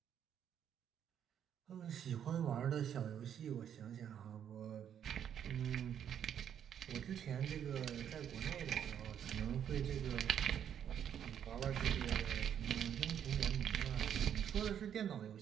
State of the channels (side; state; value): left; quieter; 9.1 dB